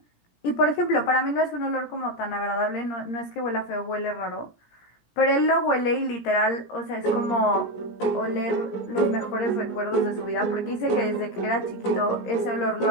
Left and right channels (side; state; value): right; late; 17 ms